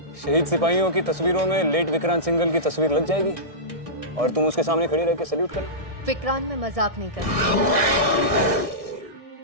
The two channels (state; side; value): late; left; 1.6 ms